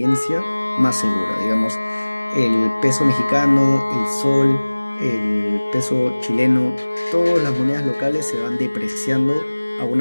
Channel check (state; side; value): inverted; both; correlation -1.00